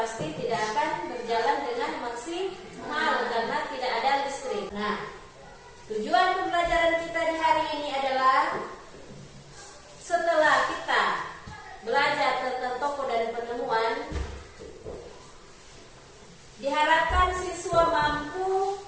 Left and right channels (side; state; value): both; identical; correlation 1.00